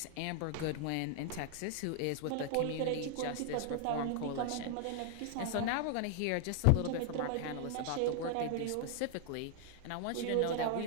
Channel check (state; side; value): different; both; correlation 0.00